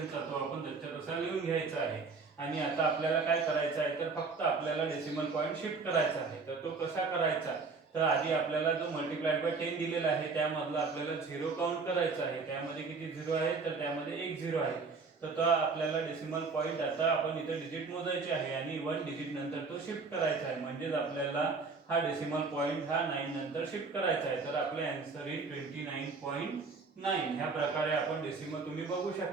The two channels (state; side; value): quieter; left; 4.4 dB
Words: तो आपण त्याच्या तसा लिहून घ्यायचा आहे. आणि आता आपल्याला काय करायचं आहे, तर फक्त आपल्याला डेसिमल पॉईंट शिफ्ट करायचा आहे. तर तो कसा करायचा, तर आधी आपल्याला जो मल्टिप्लाइड बाय 10 दिलेला आहे त्यामधला आपल्याला झिरो काउंट करायचा आहे. त्यामध्ये किती झिरो आहे, तर त्यामध्ये एक झिरो आहे. तर तो आपल्याला डेसिमल पॉईंट आता आपण इथे डिजिट मोजायचे आहे आणि 1 डिजिट नंतर तो शिफ्ट करायचा आहे. म्हणजेच आपल्याला हा डेसिमल पॉईंट हा 9 नंतर शिफ्ट करायचा आहे. तर आपले आन्सर इज 29.9. ह्या प्रकारे आपण डेसिमल, तुम्ही बघू